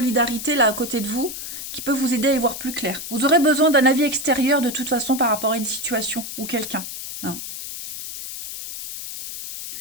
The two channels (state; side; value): noise; left; hiss, 8 dB below the sound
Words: là à côté de vous qui peut vous aider à y voir plus clair. Vous aurez besoin d'un avis extérieur de toute façon par rapport à une situation ou quelqu'un, hein.